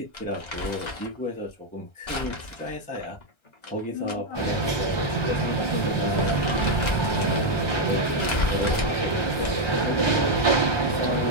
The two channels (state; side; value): late; right; 1.3 ms